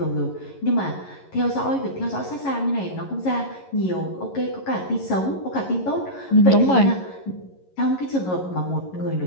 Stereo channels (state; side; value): late; right; 11 ms